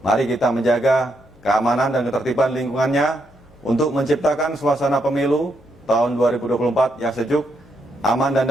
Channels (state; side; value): noise; left; hum, 28 dB below the sound